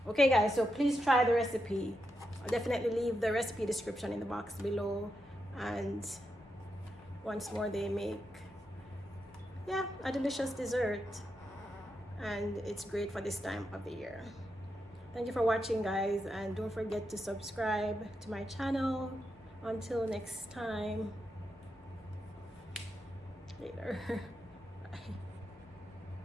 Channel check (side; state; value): both; normal; correlation 0.85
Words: Okay guys, so please try the recipe. I'll definitely leave the recipe description in the box below. And once more, they make, yeah, a delicious dessert, and it's great for this time of the year. Thank you for watching guys, and don't forget to subscribe to my channel. Until next time, later. Bye.